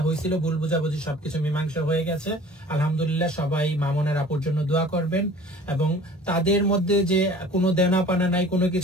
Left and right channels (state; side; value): normal; both; correlation 0.46